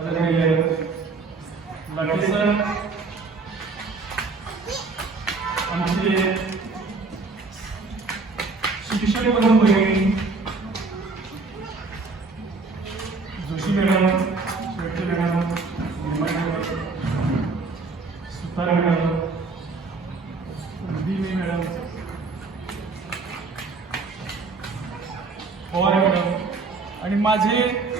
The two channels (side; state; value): left; quieter; 4.0 dB